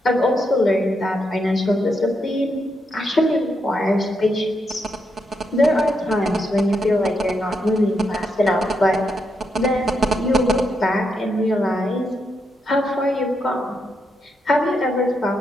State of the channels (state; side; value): normal; both; correlation 0.81